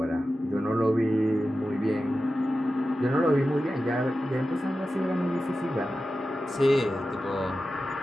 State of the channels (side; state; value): both; normal; correlation 0.93